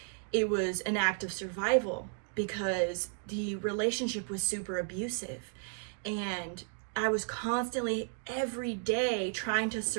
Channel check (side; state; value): left; silent; 55 dB below the other